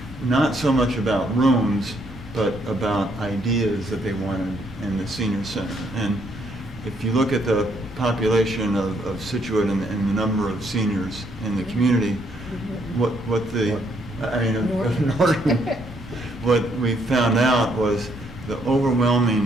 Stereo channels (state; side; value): normal; both; correlation 0.71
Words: not so much about rooms, but about ideas that they wanted in the senior center. And if you look at the population of Situate and the number of seniors in the community, what we found out was the